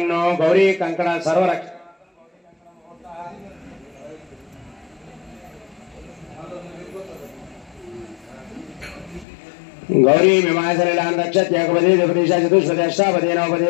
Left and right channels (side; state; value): right; drops out; at 9.2 s